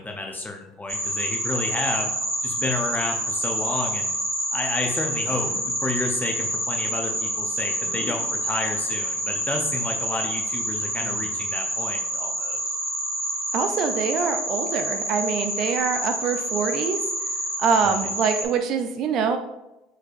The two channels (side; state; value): both; normal; correlation 0.46